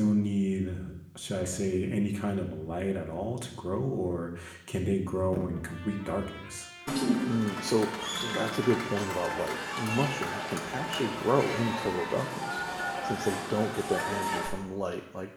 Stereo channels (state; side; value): identical; both; correlation 1.00